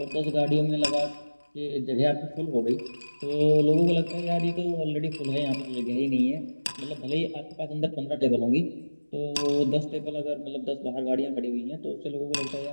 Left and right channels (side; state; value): both; inverted; correlation -1.00